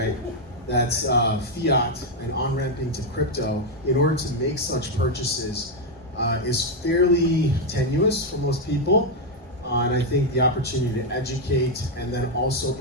That's fiat and on-ramping to crypto in order to make such purchases is fairly tenuous for most people. And I think the opportunity to educate and then also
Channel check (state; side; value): normal; both; correlation 0.01